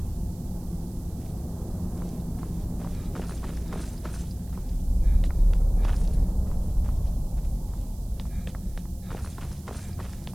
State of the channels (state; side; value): noise; right; hiss, 24 dB below the sound